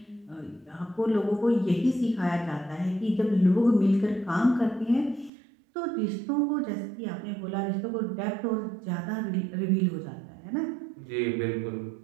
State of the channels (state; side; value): drops out; left; at 5.3 s